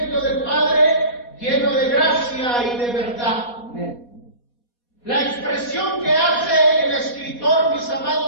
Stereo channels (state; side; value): late; right; 4.2 ms